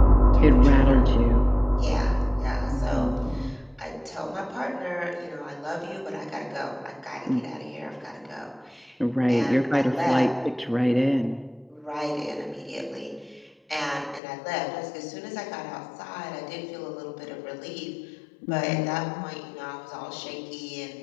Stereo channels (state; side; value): drops out; right; at 14.2 s